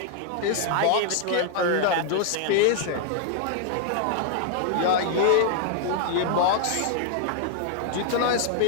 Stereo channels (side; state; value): both; different; correlation 0.00